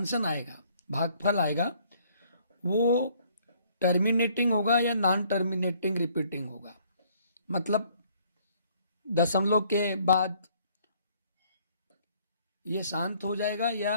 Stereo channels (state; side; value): inverted; both; correlation -0.62